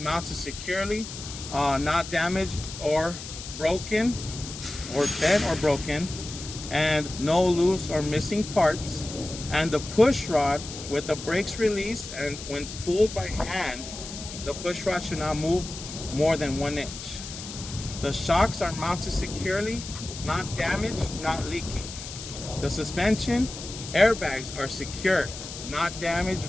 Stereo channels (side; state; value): left; noise; hiss, 11 dB below the sound